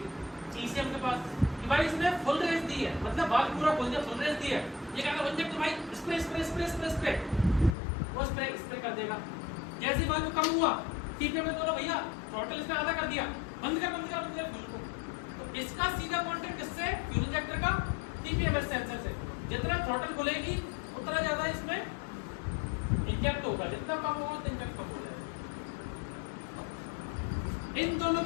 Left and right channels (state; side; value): drops out; right; at 7.8 s